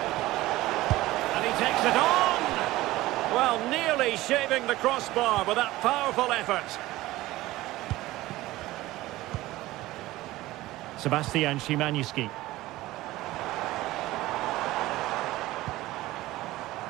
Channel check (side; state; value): left; quieter; 17.5 dB